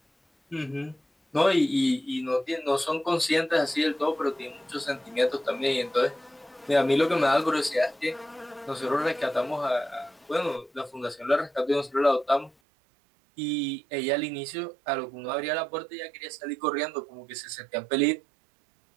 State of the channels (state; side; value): drops out; left; at 12.5 s